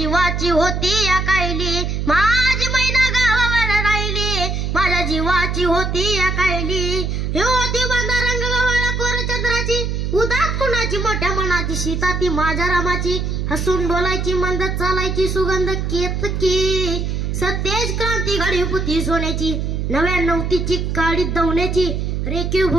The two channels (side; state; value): right; noise; hum, 1 dB below the sound